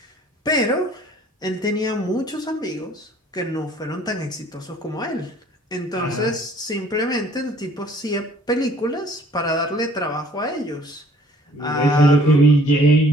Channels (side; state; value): both; normal; correlation 0.56